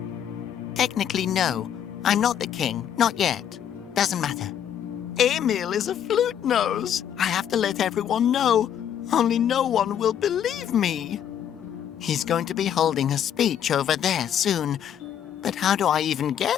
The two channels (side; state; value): right; quieter; 9.5 dB